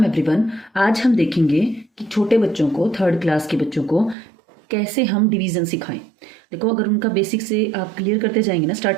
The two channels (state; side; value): drops out; left; at 4.2 s